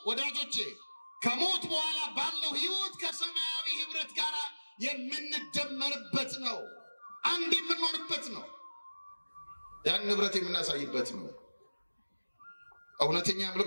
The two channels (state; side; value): inverted; both; correlation -1.00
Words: ወዳጆቼ ከሞት በኋላ ባለው ህይወት ከሰማያዊ ህብረት ጋር የምንደመርበት ነው። አንድ የምንሆንበት ነው። ያን ህብረት የምናሳይበት ነው። እውነተኛ